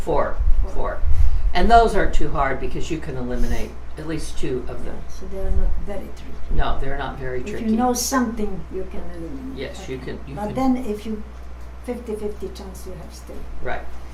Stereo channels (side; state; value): both; identical; correlation 1.00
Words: 4. 4. And those aren't too hard because you can eliminate at least 2 of them. So they are not very tricky. No, they're not very If tricky. you know something, you can eliminate. Yes, Okay. you can. But then if you 50-50 chance you have still. Right,